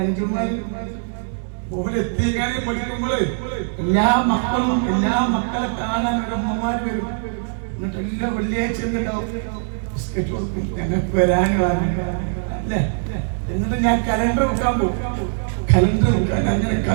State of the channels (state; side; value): silent; left; 64 dB below the other